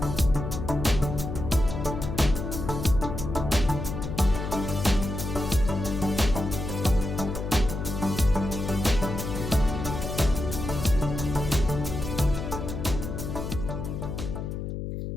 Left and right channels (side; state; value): left; noise; hum, 5 dB below the sound